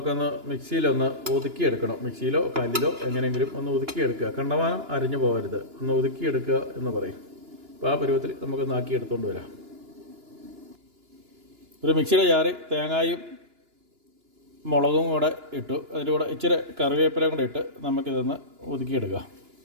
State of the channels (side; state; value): left; late; 2.9 ms